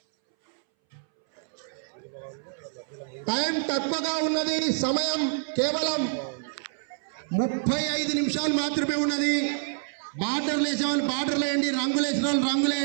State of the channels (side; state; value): left; silent; 60 dB below the other